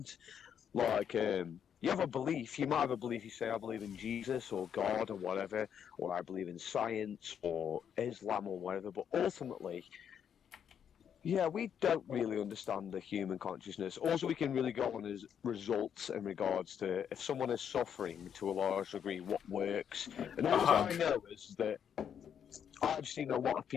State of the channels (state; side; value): quieter; right; 8.3 dB